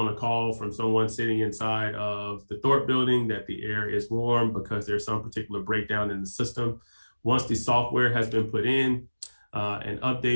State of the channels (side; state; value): both; inverted; correlation -1.00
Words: a call from someone sitting inside of the Thorpe building that the air is warm because there's some particular breakdown in the system, once the software has been put in and